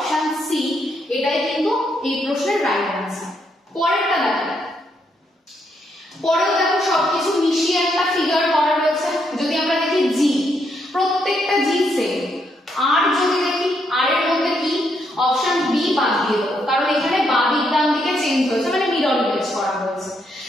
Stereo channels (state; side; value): normal; both; correlation 0.76